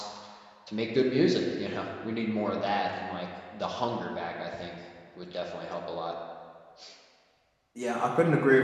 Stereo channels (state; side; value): identical; both; correlation 1.00